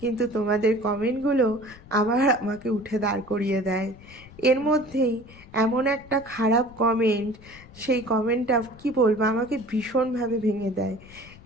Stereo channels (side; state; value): left; noise; rumble, 21 dB below the sound